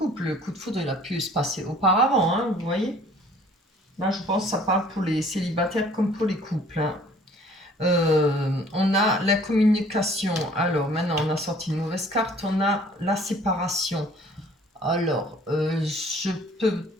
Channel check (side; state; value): both; normal; correlation 0.54